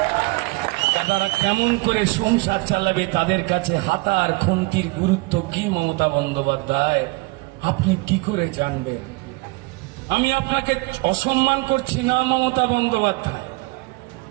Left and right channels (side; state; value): left; quieter; 25.1 dB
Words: তারা কেমন করে সংসার চালাবে, তাদের কাছে হাতার খুন্তির গুরুত্ব কি মমতা বন্দ্যোপাধ্যায় আপনি কি করে জানবেন? আমি আপনাকে অসম্মান করছি না মমতা বন্দ্যোপাধ্যায়।